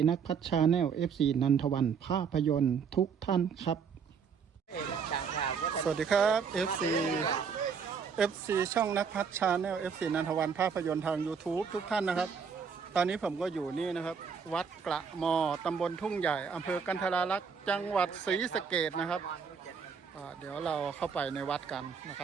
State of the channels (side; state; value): left; quieter; 6.3 dB